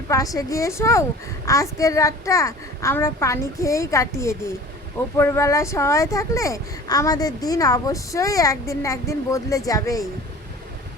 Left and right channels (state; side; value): normal; both; correlation 0.42